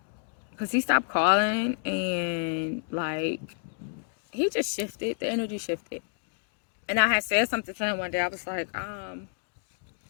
he stopped calling and like, he just shifted, the energy shifted. And I had said something to him one day. I was like,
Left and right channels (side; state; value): right; silent; digital silence